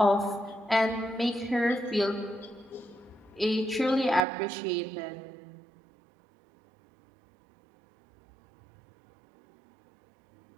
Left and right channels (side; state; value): left; drops out; at 4.2 s